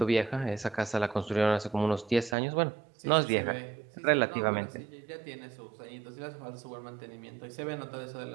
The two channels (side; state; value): left; drops out; at 2.4 s